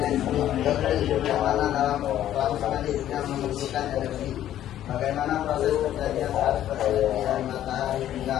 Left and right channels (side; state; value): right; quieter; 11.9 dB